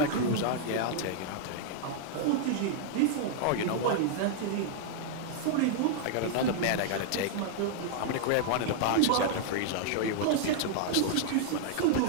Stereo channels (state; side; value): different; both; correlation -0.01